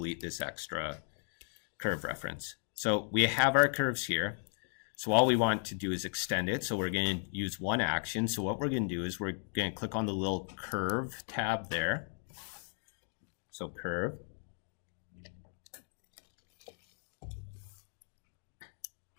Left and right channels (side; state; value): right; silent; 54 dB below the other